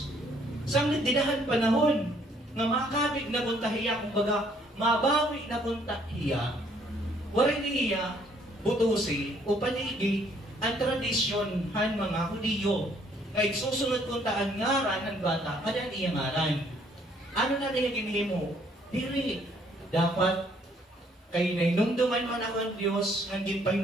Samlit dinahan panahon, nga makabig na puntahiya, kumbaga, mabawi na puntahiya, waray niya, butusi, o panigi, ang tradisyon han mga Hudiyo, kaya susunod kong taan ngaran ng bata, kada niya ngaran. Ano na niya ginhimo? Diri. Dapat, kay nainumduman man ako ang Diyos, nangin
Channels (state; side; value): normal; both; correlation 0.65